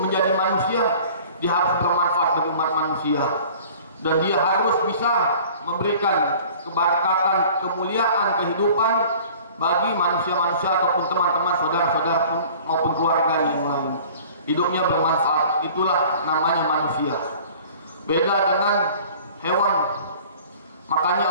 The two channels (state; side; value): inverted; both; correlation -0.47